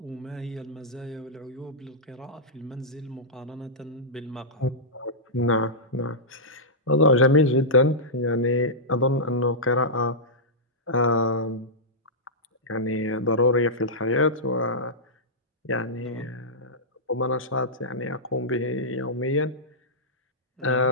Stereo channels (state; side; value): normal; both; correlation -0.12